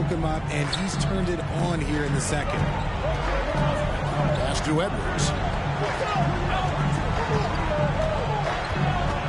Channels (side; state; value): both; identical; correlation 1.00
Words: him up, and he's turned it on here in the second. Pass to Edwards.